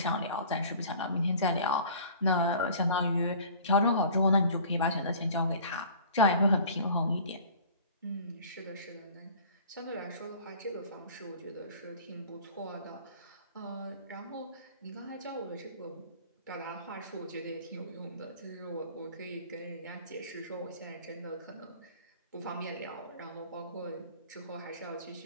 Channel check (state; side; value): inverted; both; correlation -0.45